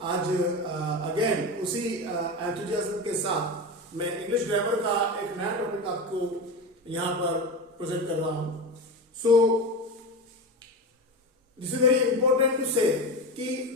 आज अगेन उसी एंथुजियाज्म के साथ मैं इंग्लिश ग्रामर का एक नया टॉपिक आपको यहाँ पर प्रेजेंट कर रहा हूँ। So this is very important to say कि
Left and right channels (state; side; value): normal; both; correlation 0.23